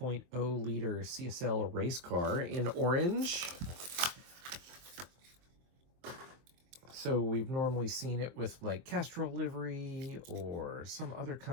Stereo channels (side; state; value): left; late; 23 ms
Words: liter CSL race car in orange. So we've normally seen it with like Castrol livery or some other